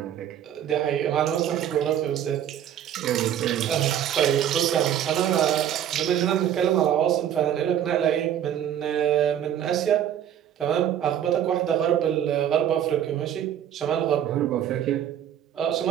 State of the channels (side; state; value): left; quieter; 10.2 dB